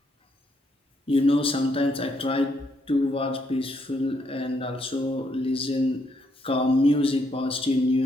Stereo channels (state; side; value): normal; both; correlation 0.75